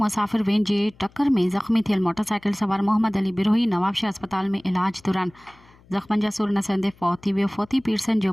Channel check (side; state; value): left; noise; hum, 28 dB below the sound